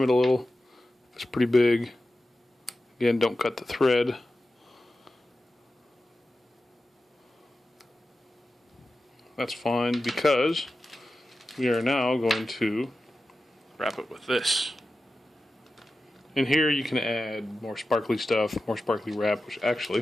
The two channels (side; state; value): both; normal; correlation 0.93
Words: it a little. It's pretty big. Again, don't cut the thread. That's fine, because we are now going to wrap it with this. In here you can add more sparkly stuff, more sparkly wrap, which